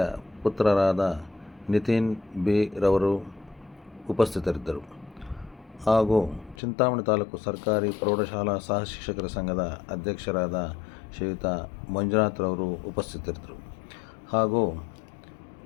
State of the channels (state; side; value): drops out; right; at 6.6 s